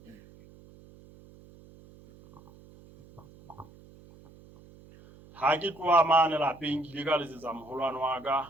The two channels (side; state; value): right; noise; hum, 23 dB below the sound